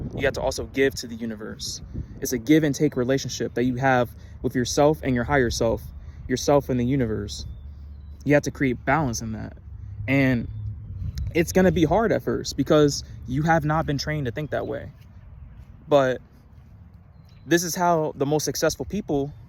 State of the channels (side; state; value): both; identical; correlation 1.00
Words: You have to also give to the universe. It's a give and take relationship that you have with yourself and your higher self, yourself and the universe. You have to create balance in that. And it's going to be hard at first because you have not been trained to think that way. But this is how the most successful people